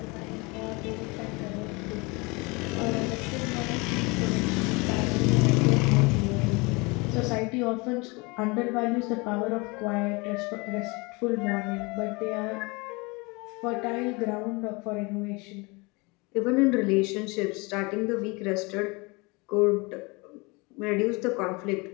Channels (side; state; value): right; quieter; 26.9 dB